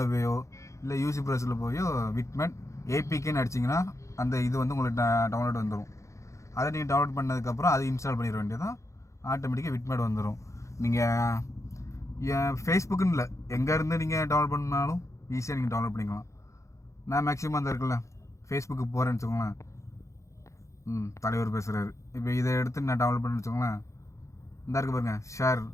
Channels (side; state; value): right; late; 0.15 ms